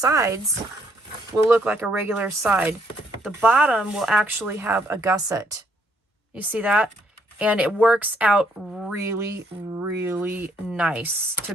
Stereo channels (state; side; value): normal; both; correlation 0.70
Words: will look like a regular side. The bottom will actually have a gusset. You see that? And it works out really, really nice to